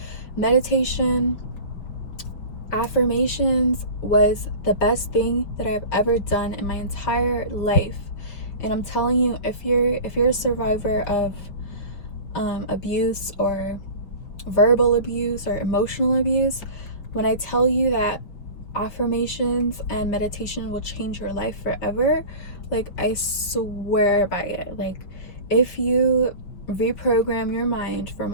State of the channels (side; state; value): right; late; 5.8 ms